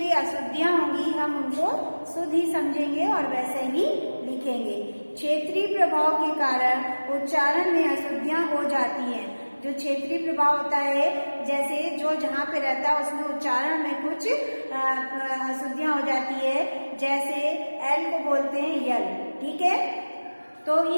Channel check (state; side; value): inverted; both; correlation -1.00